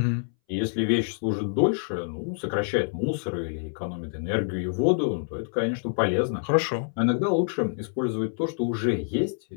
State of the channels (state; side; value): silent; right; 60 dB below the other